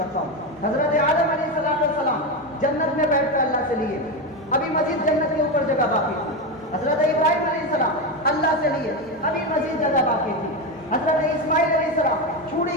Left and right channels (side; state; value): both; normal; correlation 0.14